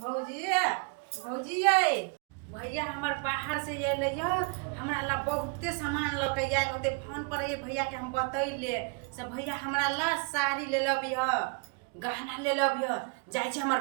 भौजी ये भैया हमर बाहर से अइले ज हमरा ला बहुते सामान ल के आइल होते फोन पर ये भैया के हम बतैले से भैया हमरा ला साड़ी ले लबी ह गहना ले लबी ह जाय छै हमर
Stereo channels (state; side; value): quieter; left; 34.8 dB